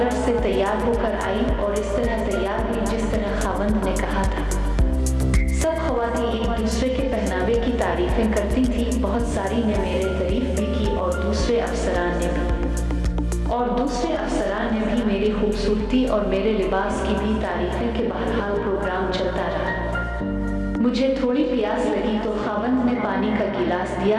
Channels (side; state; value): both; identical; correlation 1.00